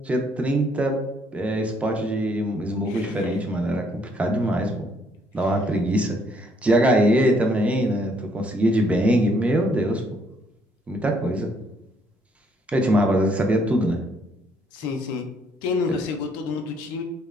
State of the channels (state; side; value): normal; both; correlation 0.68